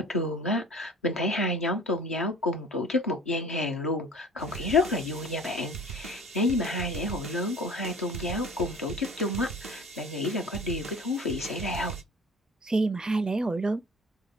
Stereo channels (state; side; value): normal; both; correlation 0.44